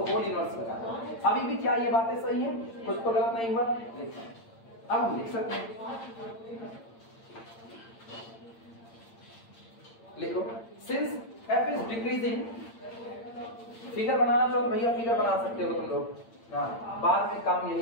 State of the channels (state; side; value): late; right; 8.8 ms